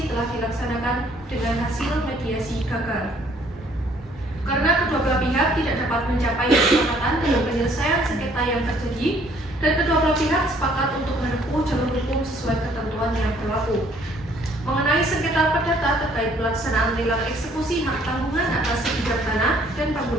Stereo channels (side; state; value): both; normal; correlation 0.62